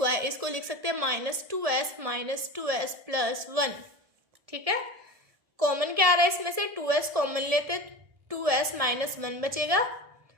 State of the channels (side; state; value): left; late; 1.7 ms